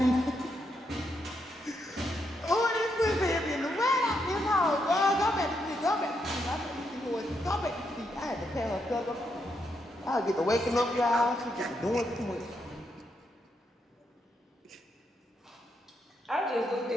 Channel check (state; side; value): normal; both; correlation 0.79